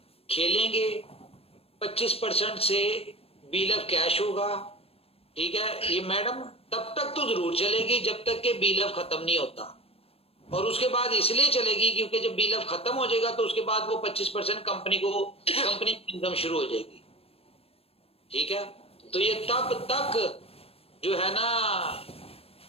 खेलेंगे 25% से बिल ऑफ कैश होगा, ठीक है, ये मैडम तब तक तो जरूर चलेगी जब तक के बिल ऑफ खत्म नहीं होता, और उसके बाद इसलिए चलेगी क्योंकि जब बिल ऑफ खत्म हो जाएगा तो उसके बाद वो 25% कंपनी इनकम शुरू हो जाएगी, ठीक है। तो ये तब तक जो है ना,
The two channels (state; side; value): late; right; 0.28 ms